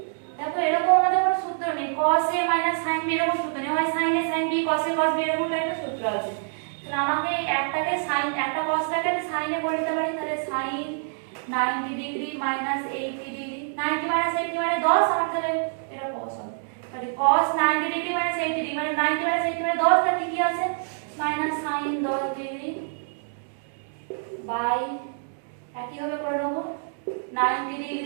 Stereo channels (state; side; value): silent; left; digital silence